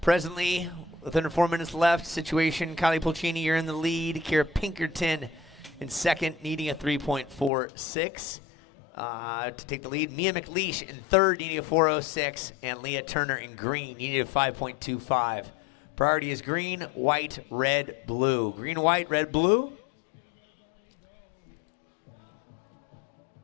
Presently, with under 4 minutes left, situation, Kylie Puccini, you're in the lead. Kira Pinkerton in second, needing a 3.46 to take the lead. Mia McLeish in third, needing a 4.06, and Leah Turner in green, needing a 5.25. Priority is green, white, red, blue. Green, white, red, blue.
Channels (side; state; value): right; drops out; at 7.5 s